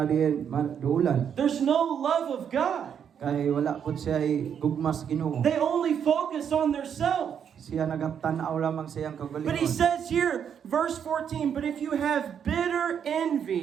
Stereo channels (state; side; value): quieter; left; 8.1 dB